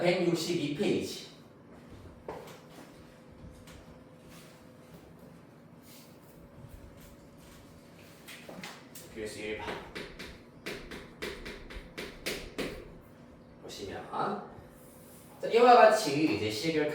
162페이지. 필수 1번. 보시면 자, 이와 같이 이제 식을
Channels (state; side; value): identical; both; correlation 1.00